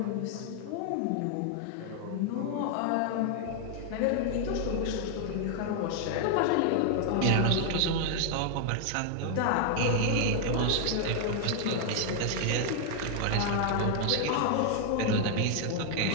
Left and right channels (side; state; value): both; different; correlation 0.00